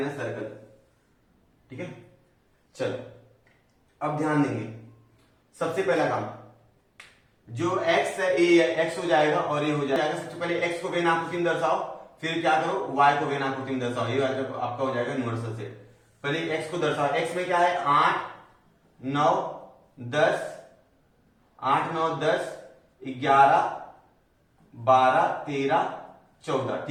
सर्कल। ठीक है, चलो अब ध्यान देंगे। सबसे पहला काम, जो x है ये x हो जाएगा और ये हो जाएगा। सबसे पहले x को वेन आकृति में दर्शाओ, फिर क्या करो y को वेन आकृति में दर्शाओ। ये आपका हो जाएगा यूनिवर्सल सेट। पहले x को दर्शाओ। x में क्या है 8 9 10, 8 9 10 11 12 13 14।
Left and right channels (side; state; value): both; identical; correlation 1.00